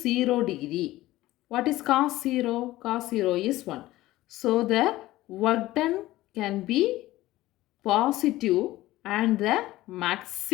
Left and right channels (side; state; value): right; quieter; 16.8 dB